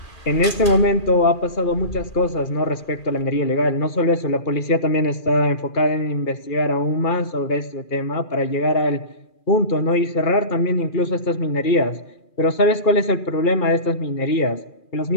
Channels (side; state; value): right; late; 2.4 ms